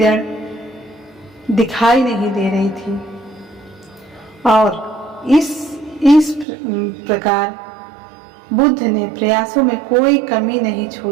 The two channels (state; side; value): drops out; left; at 6.5 s